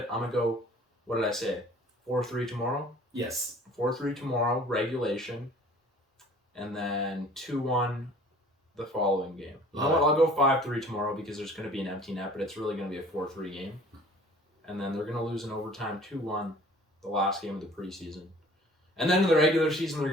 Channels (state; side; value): normal; both; correlation 0.50